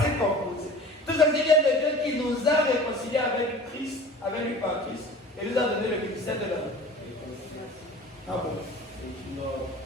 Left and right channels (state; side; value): normal; both; correlation 0.41